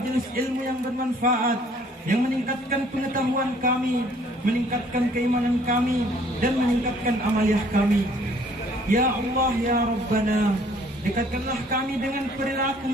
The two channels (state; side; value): normal; both; correlation 0.59